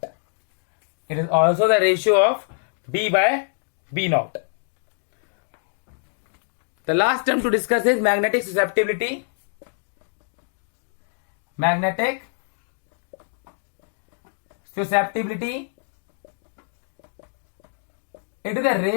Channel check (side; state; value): right; silent; digital silence